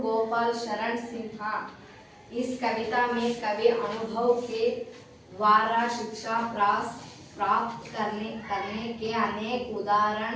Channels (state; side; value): identical; both; correlation 1.00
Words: गोपाल शरण सिन्हा। इस कविता में कवि अनुभव के द्वारा शिक्षा प्राप्त करने के अनेक उदाहरण